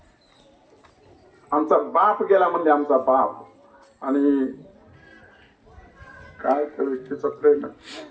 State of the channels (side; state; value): both; identical; correlation 1.00